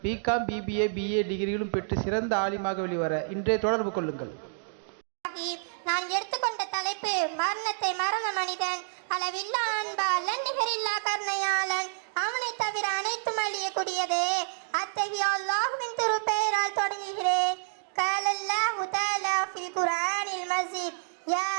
பிகாம், பிபிஏ, பிஏ டிகிரிகளும் பெற்று சிறந்த ஆலிமாக வெளிவர இன்றே தொடர்பு கொள்ளுங்கள். நான் எடுத்துக்கொண்ட தலைப்பு மரணத்தை மறந்த மனிதன், அளவில்லா அன்பாளன், நிகரில்லா கருணையாளன், அவனை தவிர அனைத்தும் அழியக்கூடியதே. அத்தகைய அல்லாஹ்வின் திருப்பெயரால் தொடங்குகிறேன். قال الله تعالى في القرآن المجيد يا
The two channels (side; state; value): left; silent; digital silence